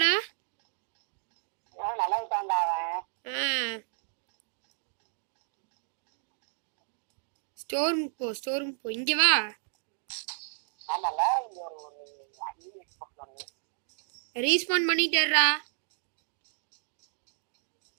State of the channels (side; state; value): left; silent; digital silence